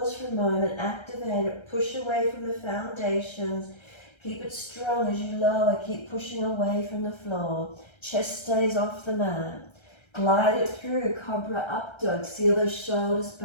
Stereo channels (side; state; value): right; late; 1.3 ms